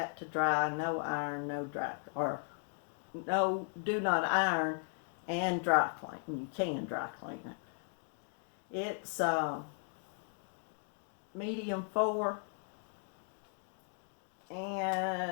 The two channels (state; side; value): silent; right; 53 dB below the other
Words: to dry, no iron, no dry, or no, do not iron and dry clean. You can dry clean it. It's medium 4,